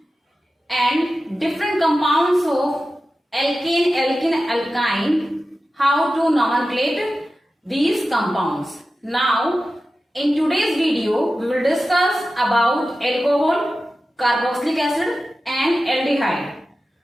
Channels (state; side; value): normal; both; correlation 0.93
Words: and different compounds of alkane, alkene, alkyne, how to nomenclate these compounds. Now, in today's video, we will discuss about alcohol, carboxylic acid and aldehyde.